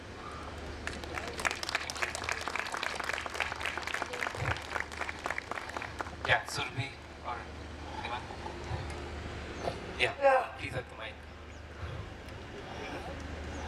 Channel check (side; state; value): both; identical; correlation 1.00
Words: Yeah, Surabhi or anyone? Yeah. Yeah. Please at the mic.